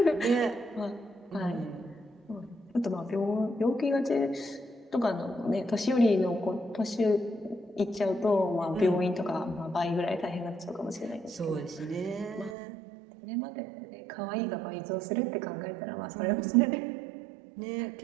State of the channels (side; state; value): left; drops out; at 12.6 s